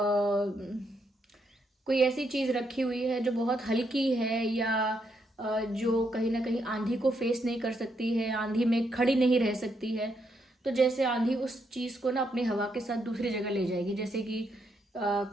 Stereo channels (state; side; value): normal; both; correlation 0.78